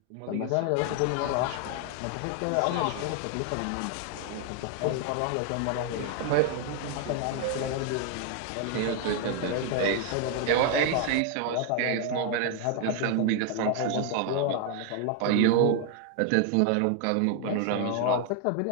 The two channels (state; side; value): different; both; correlation 0.00